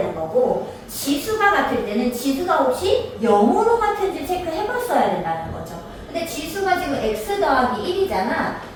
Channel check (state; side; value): identical; both; correlation 1.00